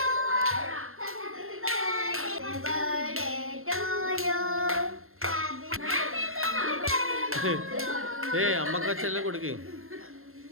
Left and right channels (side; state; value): left; late; 0.62 ms